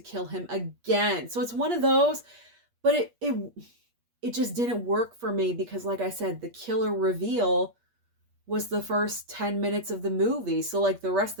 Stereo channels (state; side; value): late; left; 8.4 ms